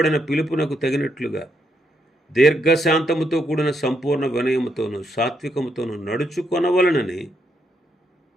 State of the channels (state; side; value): normal; both; correlation 0.78